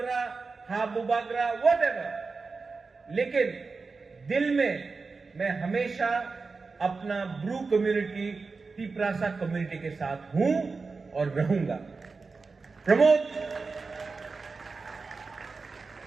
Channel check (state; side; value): quieter; left; 4.3 dB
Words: हा बुबागरा, वॉट एवर. लेकिन दिल में मैं हमेशा अपना ब्रू कम्युनिटी, तिपरासा कम्युनिटी के साथ हूं और रहूंगा. Pramod,